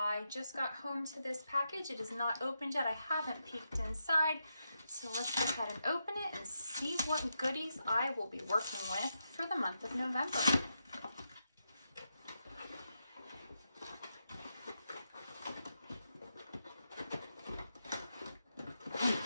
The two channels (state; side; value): inverted; both; correlation -0.85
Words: just got home to this package. It is not opened yet. I haven't peeked inside. So let's go ahead and open it and see what goodies I will be working with for the month of November.